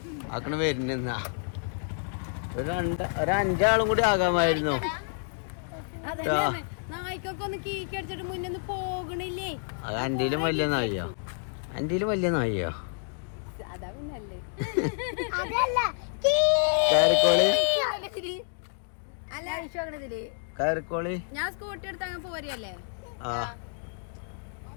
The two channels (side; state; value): right; silent; digital silence